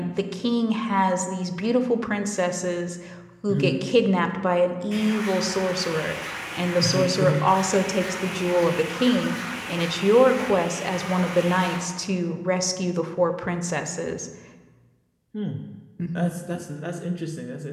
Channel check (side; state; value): both; identical; correlation 1.00